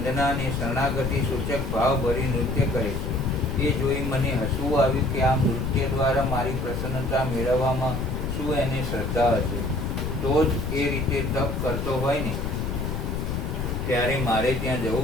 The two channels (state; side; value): noise; left; rumble, 2 dB below the sound